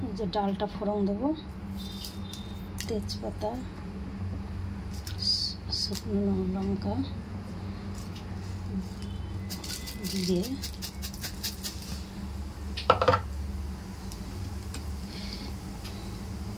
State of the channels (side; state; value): both; identical; correlation 1.00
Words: এই যে ডালটা ফোড়ন দেবো, তেজপাতা, শুকনো লঙ্কা দিয়ে